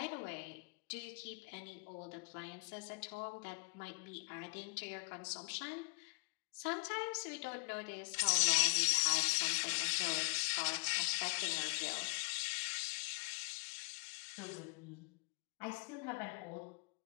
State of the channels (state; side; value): quieter; right; 33.3 dB